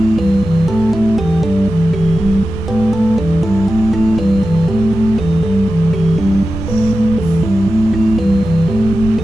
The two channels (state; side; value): normal; both; correlation 0.92